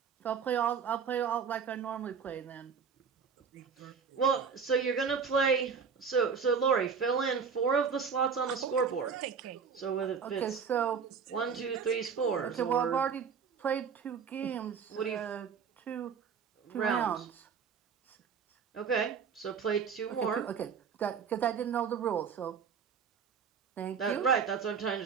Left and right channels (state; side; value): quieter; left; 6.3 dB